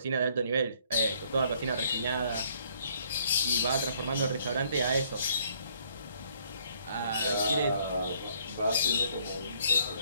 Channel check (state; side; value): inverted; both; correlation -0.64